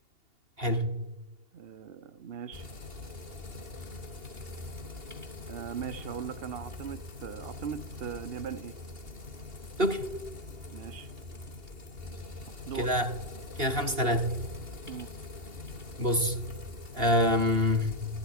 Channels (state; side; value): late; left; 2.8 ms